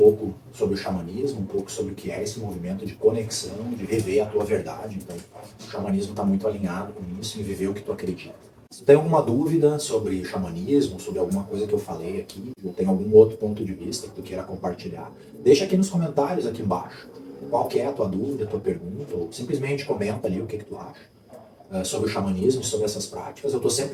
sobre o xamanismo, um pouco sobre o que é esse movimento de conexão, de viver a tua verdade. Então, o xamanismo está muito alinhado com isso, em viver o que tu acredita. Se tu tem alguma dúvida sobre xamanismo, sobre alguma coisa que eu falei aqui, ou tem algum outro ponto de vista que tu queira compartilhar, deixa aqui nos comentários aqui embaixo. Qual que é a tua dúvida, a tua pergunta, ou simplesmente comenta ali o que tu acha sobre o xamanismo, sobre essas práticas. Eu estou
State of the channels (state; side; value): identical; both; correlation 1.00